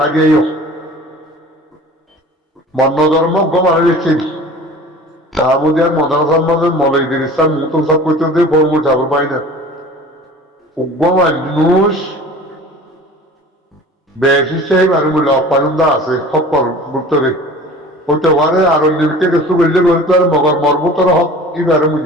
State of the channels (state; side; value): normal; both; correlation 0.42